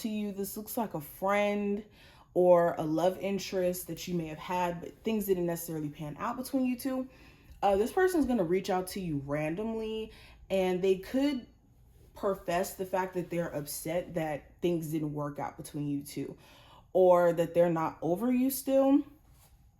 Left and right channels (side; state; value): both; identical; correlation 1.00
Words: you. This looks like a friend or a love interest that you may have had, but things didn't necessarily pan out between you two. This person is going to reach out to you randomly, and they could profess the fact that they're upset that things didn't work out between you two, or that they're not over you still.